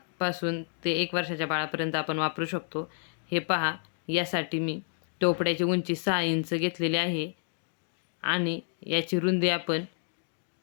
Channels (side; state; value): right; silent; digital silence